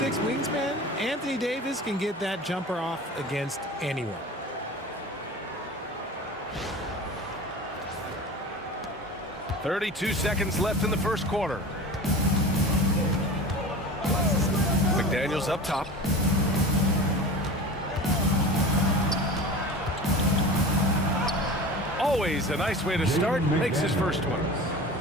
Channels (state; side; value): normal; both; correlation 0.34